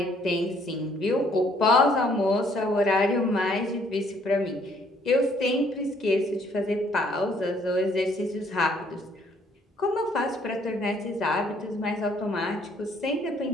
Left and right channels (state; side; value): normal; both; correlation 0.64